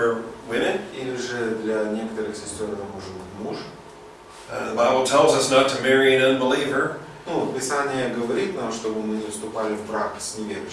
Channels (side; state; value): both; identical; correlation 1.00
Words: women. Или же для некоторых сестер это может быть муж. The Bible tells us not to marry an unbeliever, Писание говорит нам, чтобы мы не вступали в брак с